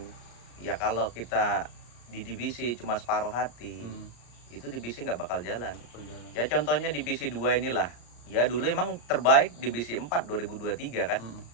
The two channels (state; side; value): late; right; 34 ms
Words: ya. Kalau kita di divisi cuma separuh hati itu divisi nggak bakal jalan. Berjalan. Ya contohnya divisi 2 inilah. Ya dulu emang terbaik divisi 4 2023 kan.